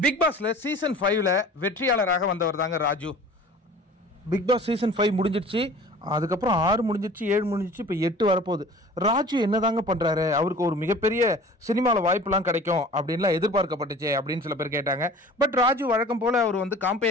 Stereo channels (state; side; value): normal; both; correlation 0.44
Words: பிக் பாஸ்ல சீசன் 5ல வெற்றியாளராக வந்தவர் தாங்க ராஜு. பிக் பாஸ் சீசன் 5 முடிஞ்சிருச்சு, அதுக்கப்புறம் 6 முடிஞ்சிருச்சு, 7 முடிஞ்சிருச்சு, இப்போ 8 வரப்போகுது. ராஜு என்னதாங்க பண்ணுறாரு? அவருக்கு ஒரு மிகப்பெரிய சினிமாவில் வாய்ப்புலாம் கிடைக்கும் அப்படின்லாம் எதிர்பார்க்கப்பட்டுச்சு அப்படின்னு சில பேர் கேட்டாங்க. பட் ராஜு வழக்கம் போல் அவர் வந்து